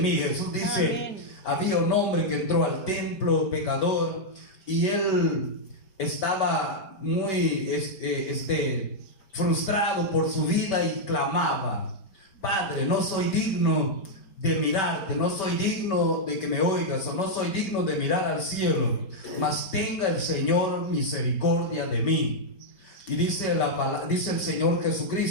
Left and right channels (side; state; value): right; late; 5.2 ms